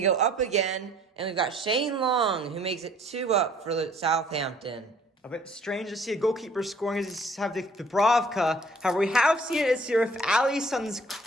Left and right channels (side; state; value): both; normal; correlation 0.57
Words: up again. And we've got Shane Long, who makes it 2-up for Southampton. A bit strange to see a goalkeeper scoring as you have the Dubravka. However, we have seen it this year with Alisson's